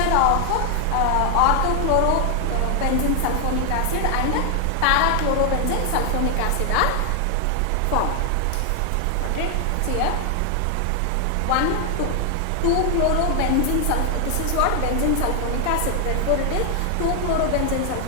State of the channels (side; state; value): both; different; correlation 0.00